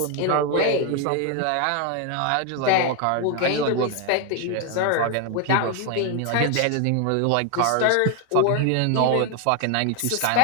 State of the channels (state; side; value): different; both; correlation 0.01